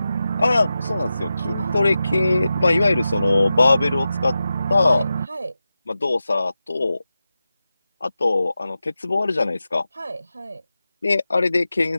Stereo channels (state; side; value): inverted; both; correlation -0.92